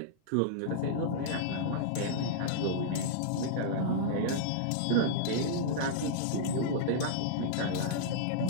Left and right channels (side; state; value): both; different; correlation -0.02